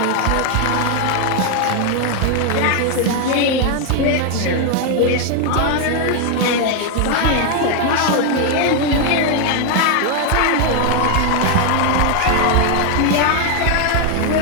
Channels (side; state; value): both; different; correlation 0.01